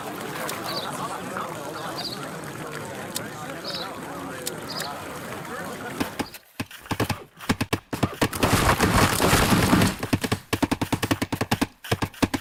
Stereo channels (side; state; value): both; identical; correlation 1.00